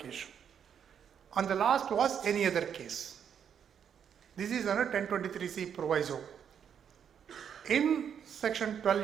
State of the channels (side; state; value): left; quieter; 8.1 dB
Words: And the last was any other case. This is under 1023C proviso. In section